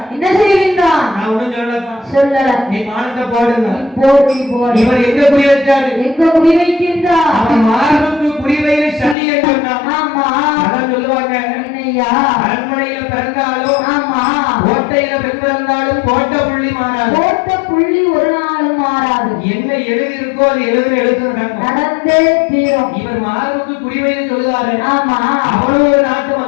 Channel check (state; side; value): drops out; right; at 9.2 s